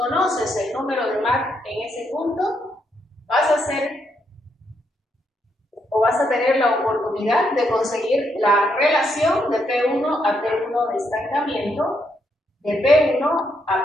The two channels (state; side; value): normal; both; correlation 0.77